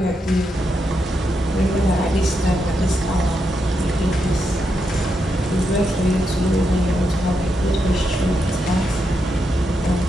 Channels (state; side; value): normal; both; correlation 0.83